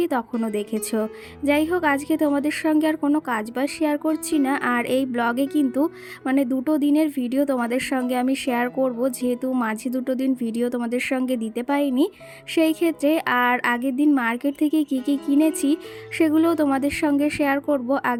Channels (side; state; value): both; identical; correlation 1.00